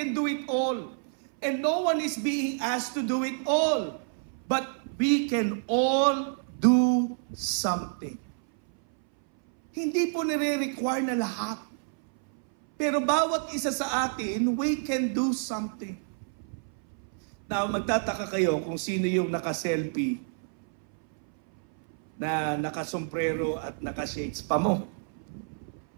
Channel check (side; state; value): left; silent; 59 dB below the other